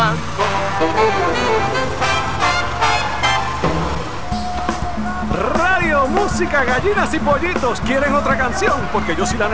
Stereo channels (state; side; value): identical; both; correlation 1.00